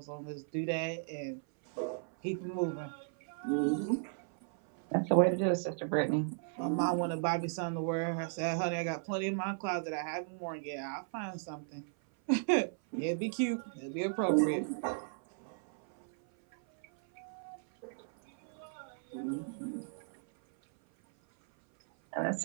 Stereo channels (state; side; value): silent; left; 54 dB below the other